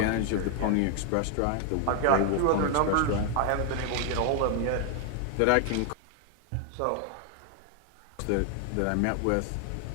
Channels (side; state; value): both; different; correlation 0.00